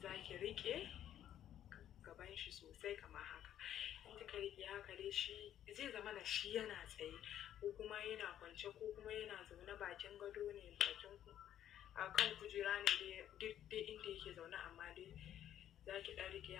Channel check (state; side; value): quieter; right; 11.0 dB